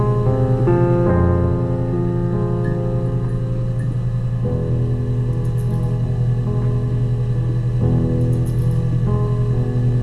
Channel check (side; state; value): both; identical; correlation 1.00